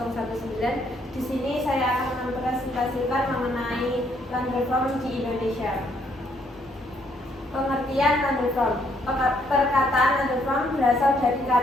Di sini saya akan mempresentasikan mengenai land reform di Indonesia. Pengertian land reform. Perkataan land reform berasal dari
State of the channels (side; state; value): both; normal; correlation 0.70